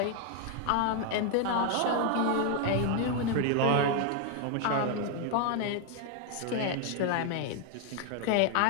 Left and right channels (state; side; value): different; both; correlation 0.01